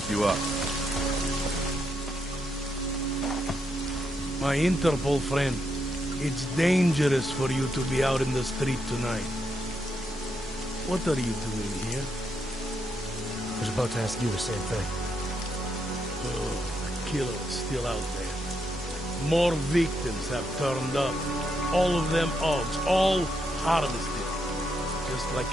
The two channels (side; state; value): both; normal; correlation 0.80